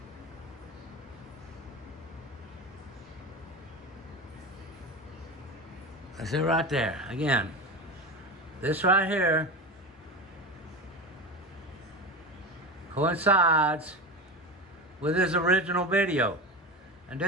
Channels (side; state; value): both; normal; correlation 0.25